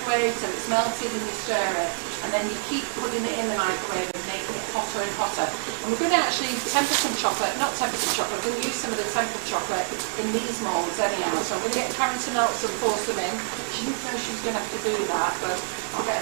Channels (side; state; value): left; silent; digital silence